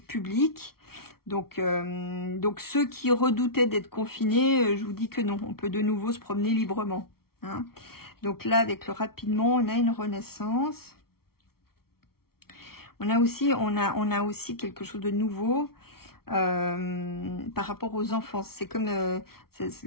Donc ceux qui redoutaient d'être confinés, je vous dis que non, on peut de nouveau se promener librement. Hein. Donc là, avec le rapidement, on a une renaissance. On a aussi quelque chose de nouveau par rapport aux enfants. C'est comme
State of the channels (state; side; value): late; right; 0.94 ms